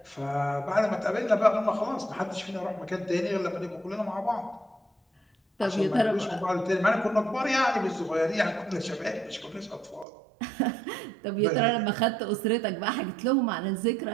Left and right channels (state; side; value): drops out; left; at 10.1 s